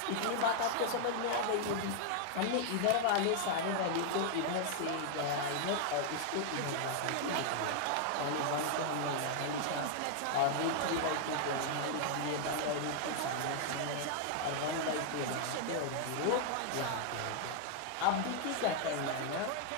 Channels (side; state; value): both; different; correlation 0.00